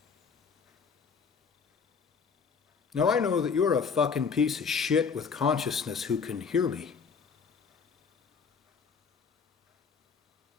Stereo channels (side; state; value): right; quieter; 5.9 dB